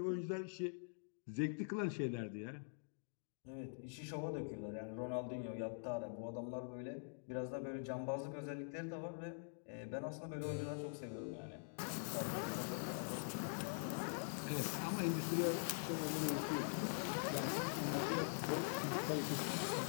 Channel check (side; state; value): right; silent; digital silence